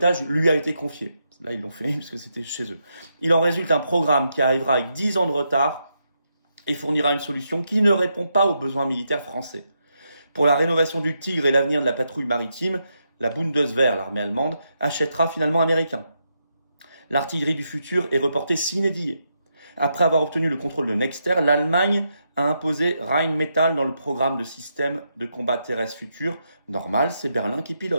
lui a été confié. Là, ils l'ont fait parce que c'était chez eux. Il en résulte un programme qui arrivera avec 10 ans de retard et fournira une solution qui ne répond pas aux besoins militaires français. Pour la rénovation du Tigre et l'avenir de la patrouille maritime, la Bundeswehr, l'armée allemande, achètera finalement américain. L'artillerie du futur est reportée sine die. Après avoir obtenu le contrôle de Nexter, l'Allemagne a imposé Rheinmetall dans le programme de système de combat terrestre futur. Normal, c'est Berlin qui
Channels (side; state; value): both; inverted; correlation -0.82